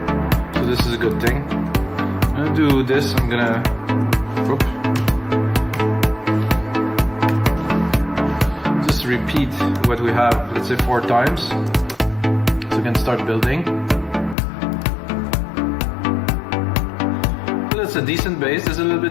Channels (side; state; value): right; drops out; at 14.4 s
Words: So this is a good thing. I'm gonna do this, I'm gonna, just repeat what we have, let's say 4 times. So we can start building. So that's a decent bass, there's a little